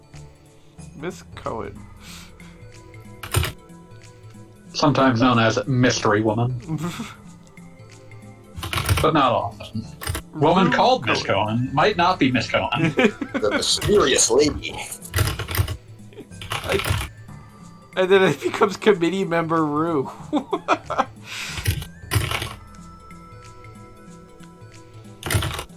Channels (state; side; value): identical; both; correlation 1.00